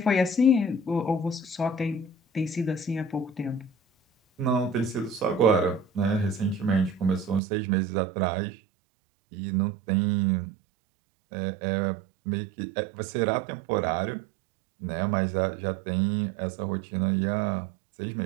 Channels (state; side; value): drops out; left; at 7.4 s